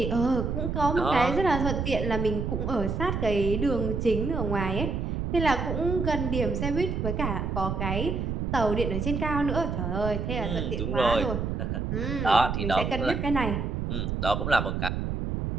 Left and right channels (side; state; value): right; noise; rumble, 2 dB below the sound